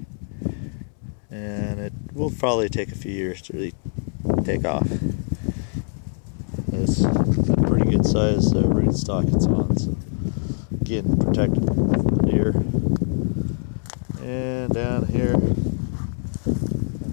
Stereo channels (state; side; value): silent; right; 63 dB below the other